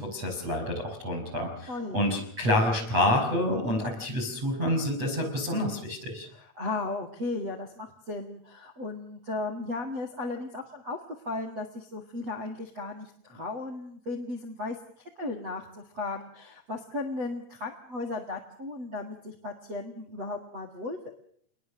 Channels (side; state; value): left; late; 8.3 ms